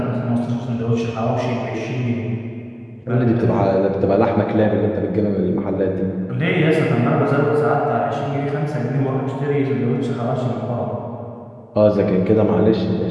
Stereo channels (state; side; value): identical; both; correlation 1.00